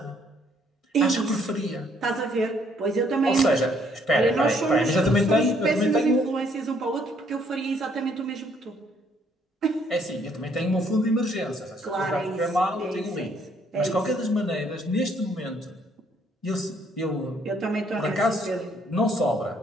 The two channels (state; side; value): normal; both; correlation 0.66